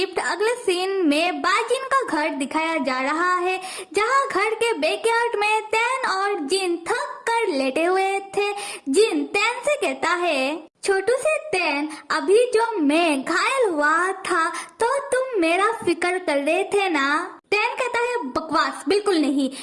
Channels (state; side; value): identical; both; correlation 1.00